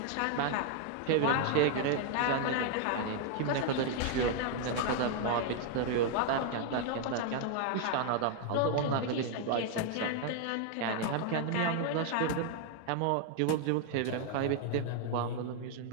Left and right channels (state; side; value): different; both; correlation 0.00